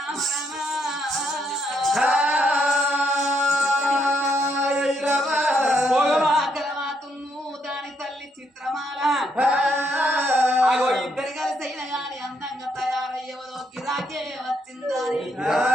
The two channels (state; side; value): normal; both; correlation 0.75